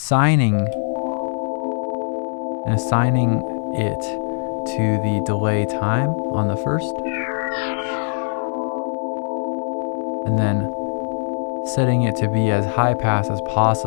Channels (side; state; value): right; silent; 65 dB below the other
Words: it to the delay time on the first, and then setting it to be as high pass as